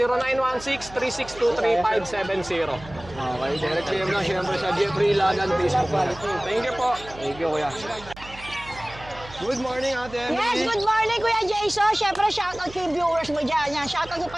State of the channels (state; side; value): noise; right; hum, 18 dB below the sound